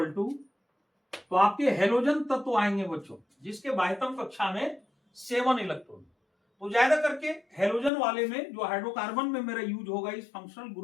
टू, तो आपके हेलोजन तत्व आएंगे बच्चों जिसके बाह्यतम कक्षा में 7 इलेक्ट्रॉन। तो ज्यादा करके हेलोजन वाले में जो हाइड्रोकार्बन में मेरा यूज होगा इस फंक्शनल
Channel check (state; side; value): drops out; right; at 7.9 s